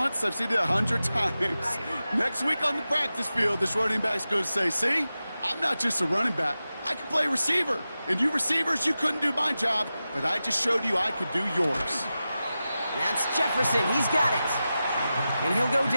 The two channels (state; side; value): inverted; both; correlation -0.93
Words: I've seen it 100 times. Next week on the practice field, this running back's going to say, see, I'm not just a running back. I can play receiver. And you receivers, you couldn't do my job, but I just showed you I could do yours. That's Jefferson. He's got it. And he'll go